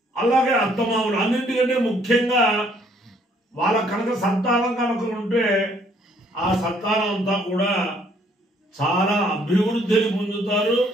అలాగే అత్తమామలు. అన్నింటికంటే ముఖ్యంగా వాళ్ళ కనుక సంతానం కనుక ఉంటే ఆ సంతానం అంతా కూడా చాలా అభివృద్ధిని పొందుతారు,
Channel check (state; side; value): normal; both; correlation 0.65